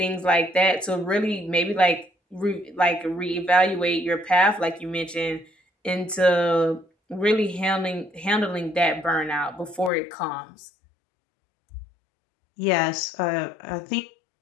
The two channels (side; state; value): right; drops out; at 9.9 s